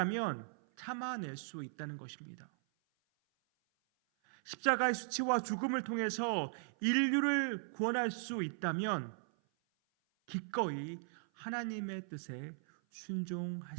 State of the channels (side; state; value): left; silent; 52 dB below the other